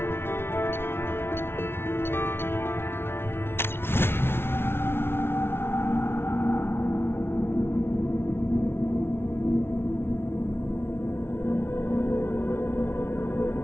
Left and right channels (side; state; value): right; late; 0.12 ms